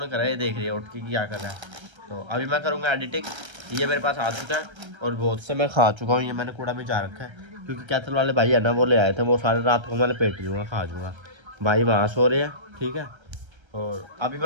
करा है, ये देख रही है उठ के क्या कर रहा है। तो अभी मैं करूँगा एडिटिंग। ये मेरे पास आ चुका है, और बहुत से मैं खा चुका हूँ, ये मैंने कूड़ा में जा रखा है, क्योंकि कैथल वाले भाई है ना वो ले आए थे, वो सारे रात को मैं लपेट लूँगा, खा जाऊँगा। भाई वहाँ सो रहे हैं, ठीक है। और अभी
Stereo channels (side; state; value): left; late; 1.3 ms